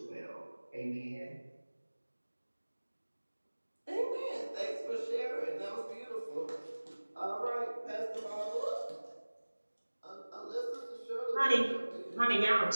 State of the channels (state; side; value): inverted; both; correlation -1.00